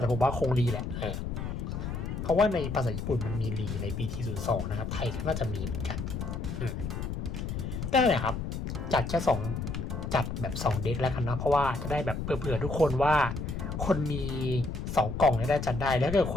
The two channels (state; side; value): noise; left; rumble, 4 dB below the sound